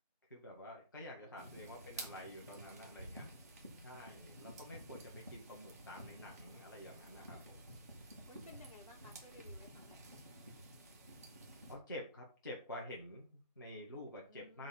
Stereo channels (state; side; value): inverted; both; correlation -0.36